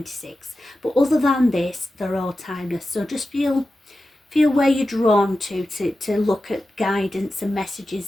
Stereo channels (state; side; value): normal; both; correlation 0.93